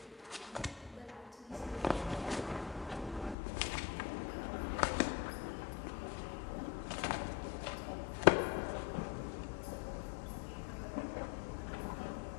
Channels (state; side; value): drops out; right; at 3.4 s